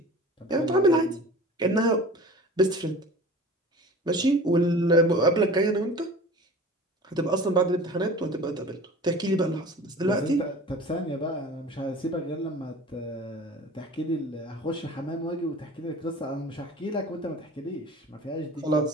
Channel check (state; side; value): normal; both; correlation 0.41